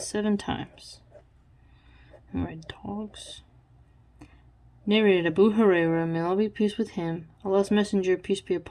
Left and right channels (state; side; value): identical; both; correlation 1.00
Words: 7 times. Alright, dogs. Narrated Abu Hurairah, may Allah be pleased with him, Allah's Messenger, peace be